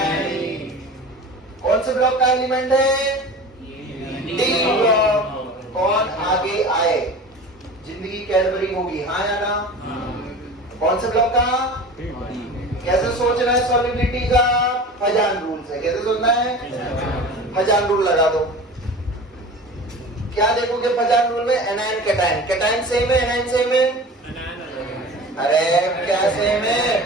कौन से ब्लॉक का एलिमेंट है? D block. कौन आगे आए? जिंदगी कैडबरी होगी, हाँ या ना? कौन से ब्लॉक का? कैसे सोचना है सॉल्युबिलिटी का? पजान रूल से। कैसे सोचना है? पजान रूल लगा दो। क्या देखोगे पजान रूल में? Anion cation. कैटायन सेम है, एनायन सेम है? अरे क्या सेम है?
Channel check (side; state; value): both; normal; correlation 0.36